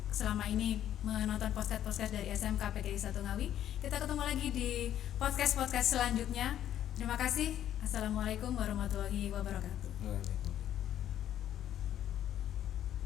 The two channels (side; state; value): right; quieter; 11.1 dB